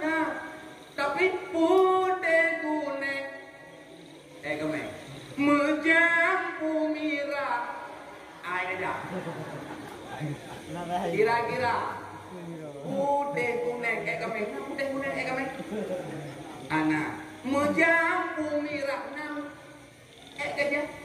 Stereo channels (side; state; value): both; identical; correlation 1.00